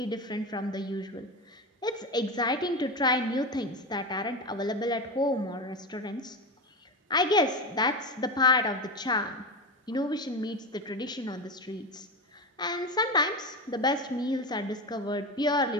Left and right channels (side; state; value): both; normal; correlation 0.20